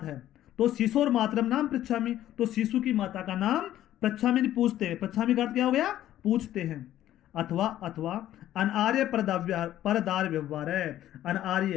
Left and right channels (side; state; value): right; quieter; 12.8 dB